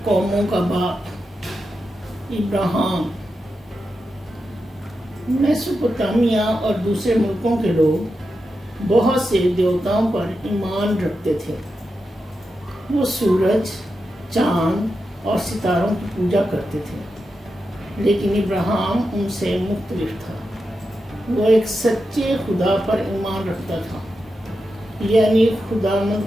قوموں کا باپ ابراہیم۔ میسوپوٹامیہ اور دوسرے ملکوں کے لوگ بہت سے دیوتاؤں پر ایمان رکھتے تھے۔ وہ سورج، چاند اور ستاروں کی پوجا کرتے تھے، لیکن ابراہیم ان سے مختلف تھا۔ وہ ایک سچے خدا پر ایمان رکھتا تھا، یعنی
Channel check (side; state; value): both; normal; correlation 0.89